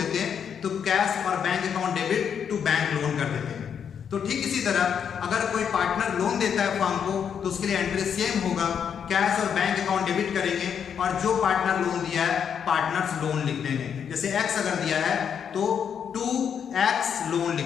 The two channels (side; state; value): right; quieter; 7.7 dB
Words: हैं तो कैश और bank account debit to bank loan कर देते हैं। तो ठीक इसी तरह अगर कोई पार्टनर लोन देता है फर्म को तो उसके लिए एंट्री सेम होगा, कैश और बैंक अकाउंट डेबिट करेंगे और जो पार्टनर लोन दिया है पार्टनर्स लोन लिख देंगे। जैसे एक्स अगर दिया है तो 2x लोन लिख